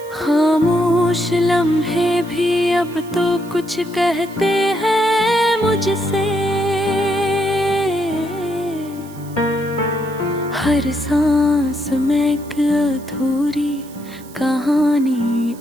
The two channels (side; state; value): right; noise; hiss, 22 dB below the sound